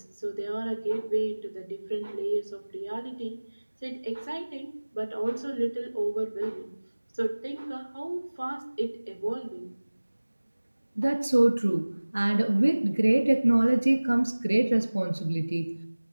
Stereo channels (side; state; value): both; inverted; correlation -1.00